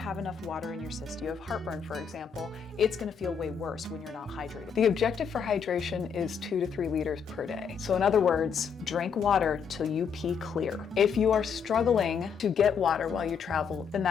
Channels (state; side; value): quieter; right; 6.6 dB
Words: enough water in your system, you have heartburn, for example, it's going to feel way worse when you're not hydrated. The objective for hydration is 2 to 3 liters per day. So in other words, drink water till you pee clear. If you are struggling to get water while you travel, then